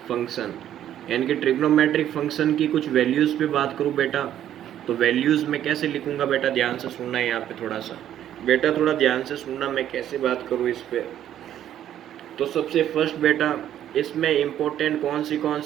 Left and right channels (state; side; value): quieter; left; 11.1 dB